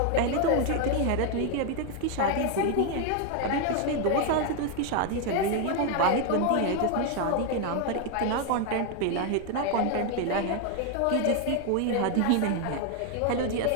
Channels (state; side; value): different; both; correlation 0.01